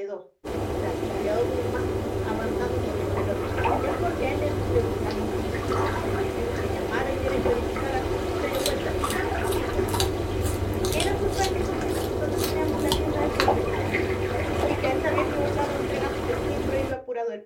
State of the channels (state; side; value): identical; both; correlation 1.00